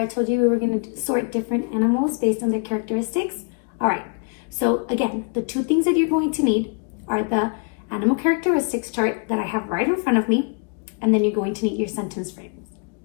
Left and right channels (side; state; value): right; quieter; 38.0 dB